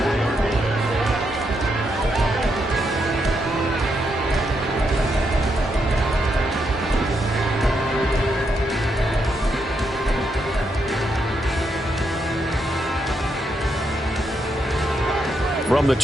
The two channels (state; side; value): normal; both; correlation 0.80